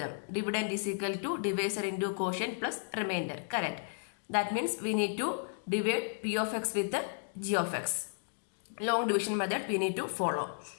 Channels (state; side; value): silent; right; digital silence